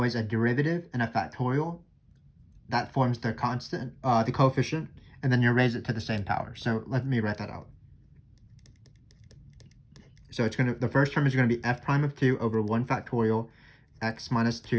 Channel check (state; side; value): identical; both; correlation 1.00